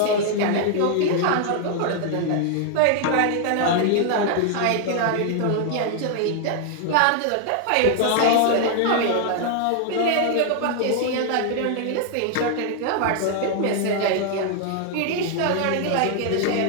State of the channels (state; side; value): different; both; correlation 0.00